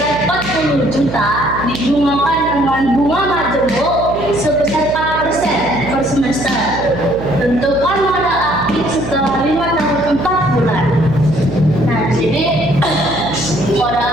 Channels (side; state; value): right; noise; hum, 9 dB below the sound